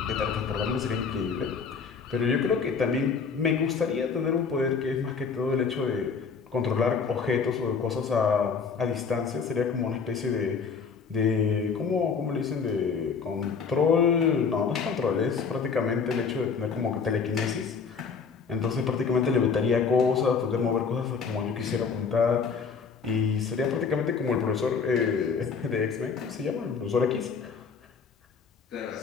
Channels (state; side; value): quieter; right; 5.6 dB